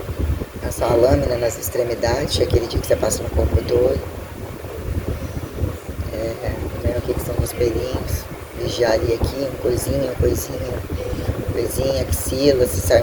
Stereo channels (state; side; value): identical; both; correlation 1.00